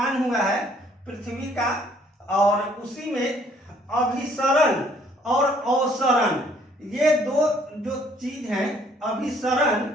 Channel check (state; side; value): normal; both; correlation 0.62